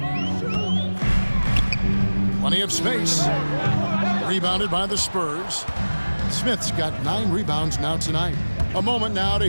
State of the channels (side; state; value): both; inverted; correlation -1.00